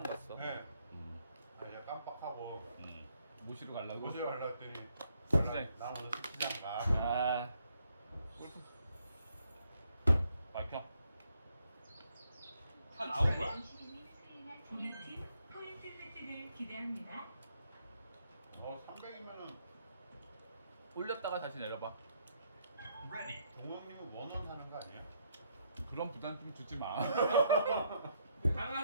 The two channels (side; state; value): both; inverted; correlation -0.73